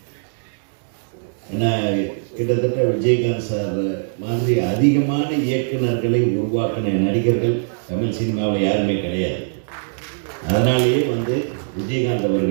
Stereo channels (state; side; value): silent; left; digital silence